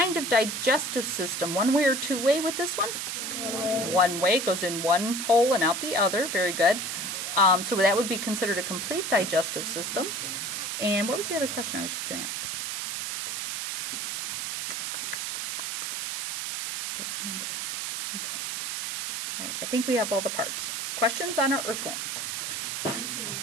of digestive system? One way or two way with this one? One way. Goes in one hole and out the other. Very good. So that would be considered a complete digestive system. And what was the other question I was just going to ask? Don't remember. Okay. All right, I think we have all the parts. Questions on our earthworm?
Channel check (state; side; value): noise; right; hiss, 3 dB below the sound